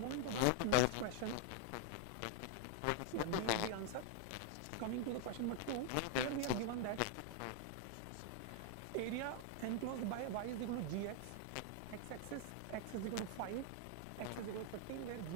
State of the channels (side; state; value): both; different; correlation 0.00